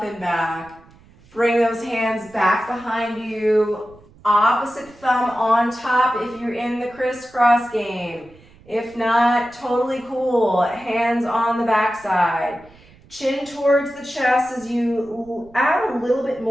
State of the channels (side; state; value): right; noise; rumble, 26 dB below the sound